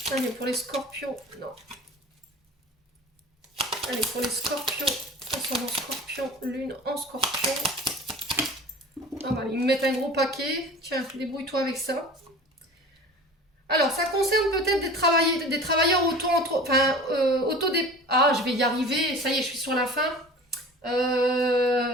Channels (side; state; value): both; normal; correlation 0.40